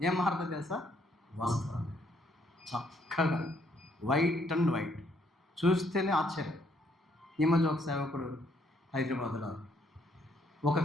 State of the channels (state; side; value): normal; both; correlation 0.69